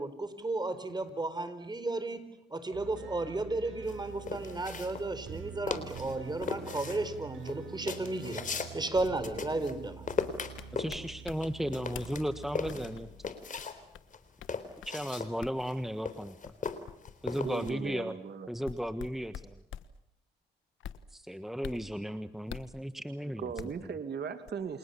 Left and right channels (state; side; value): normal; both; correlation 0.74